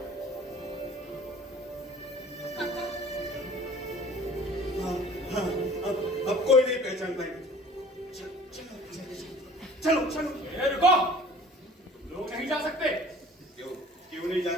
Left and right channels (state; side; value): normal; both; correlation 0.48